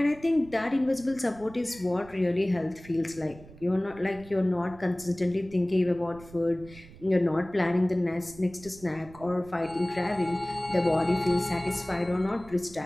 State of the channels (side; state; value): right; noise; rumble, 20 dB below the sound